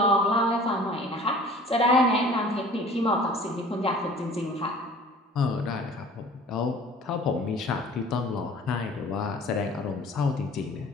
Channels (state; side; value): normal; both; correlation 0.47